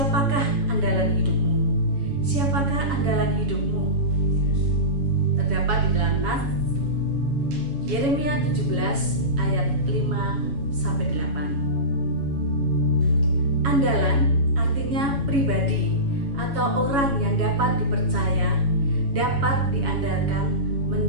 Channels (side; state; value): left; late; 7.2 ms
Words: andalan hidupmu? Siapakah andalan hidupmu? Terdapat di dalam nas Yeremia 17 ayat 5-8. Andalan artinya pribadi atau orang yang dapat dipercaya, dapat diandalkan